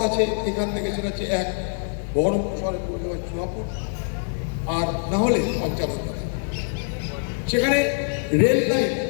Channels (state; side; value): silent; right; 62 dB below the other